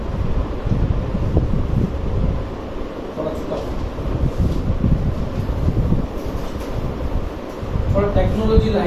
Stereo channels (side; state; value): both; identical; correlation 1.00